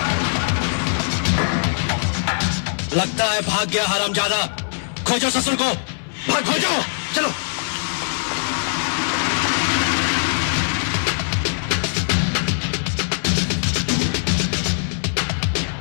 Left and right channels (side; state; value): right; silent; 60 dB below the other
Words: लगता है भाग गया हरामजादा। खोजो ससुर को, भाग खोजो। चलो